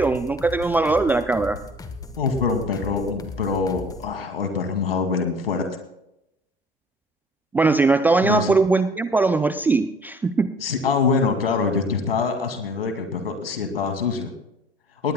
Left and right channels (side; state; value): both; normal; correlation 0.51